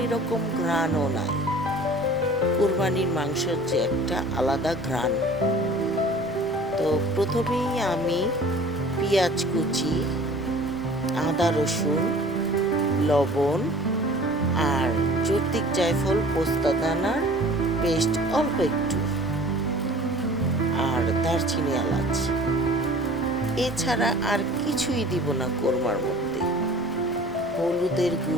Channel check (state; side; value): noise; left; rumble, 21 dB below the sound